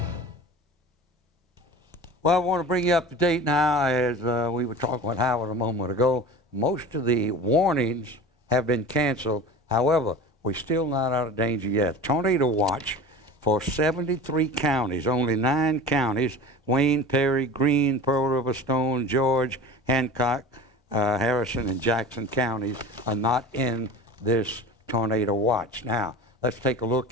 Well, I want to bring you up to date now, as we were talking with Howard a moment ago. Most of the warnings have been canceled. However, we're still not out of danger yet. Tornado watch for 73 counties, only 9 counties, Wayne, Perry, Greene, Pearl River, Stone, George, Hancock, Harrison, and Jackson counties are not in this tornado watch. Now, let's take a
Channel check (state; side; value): normal; both; correlation 0.36